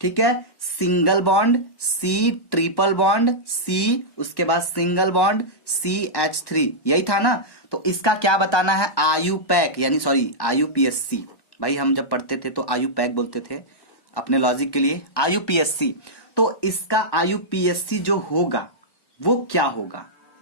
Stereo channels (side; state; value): right; late; 1.1 ms